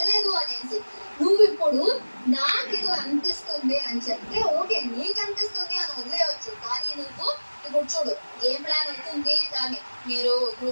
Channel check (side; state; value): both; inverted; correlation -1.00